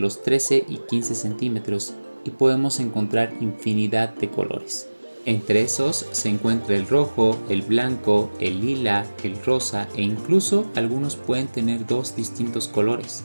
13 y 15 centímetros y podemos encontrar infinidad de colores. Entre esos se encuentra el rojo, el blanco, el lila, el rosa e incluso algunos pueden tener dos distintos colores.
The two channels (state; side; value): inverted; both; correlation -1.00